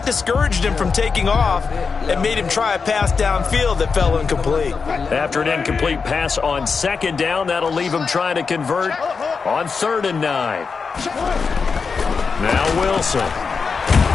discouraged him from taking off and made him try a pass downfield that fell incomplete. After an incomplete pass on 2nd down, that'll leave him trying to convert on 3rd and 9. Now Wilson.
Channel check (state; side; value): quieter; right; 5.2 dB